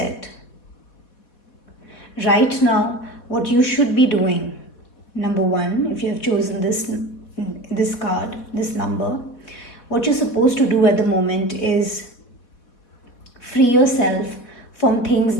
Right now, what you should be doing, number 1, if you have chosen this card, this number, what you're supposed to do at the moment is free yourself from things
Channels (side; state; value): right; late; 4.0 ms